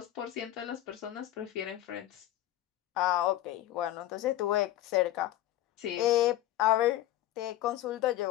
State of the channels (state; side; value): quieter; right; 14.0 dB